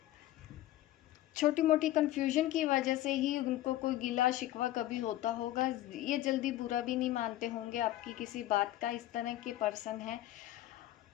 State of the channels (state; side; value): quieter; right; 14.9 dB